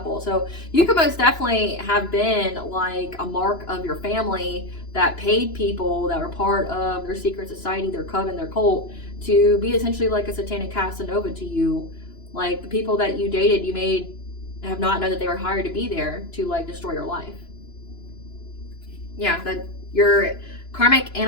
So you could most definitely have been like a mark of your family that paid people that were part of their secret society, their coven, their cult, to be essentially like a satanic Casanova to you. Like the people that you dated, you have not known that they were hired to be there to like destroy your life. Yeah, that your karmic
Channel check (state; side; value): late; right; 2.9 ms